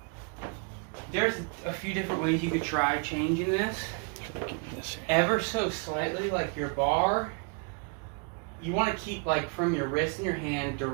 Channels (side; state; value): left; quieter; 37.6 dB